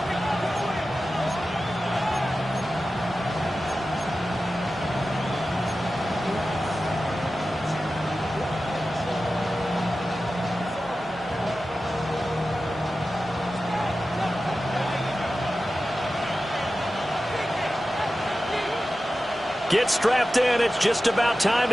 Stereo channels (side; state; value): both; normal; correlation 0.94